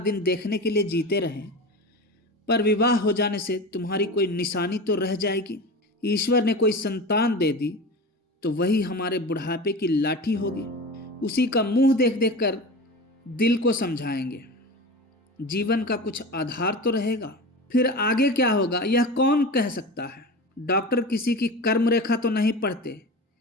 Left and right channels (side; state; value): both; normal; correlation 0.30